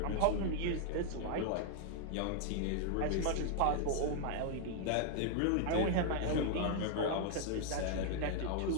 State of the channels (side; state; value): both; different; correlation 0.00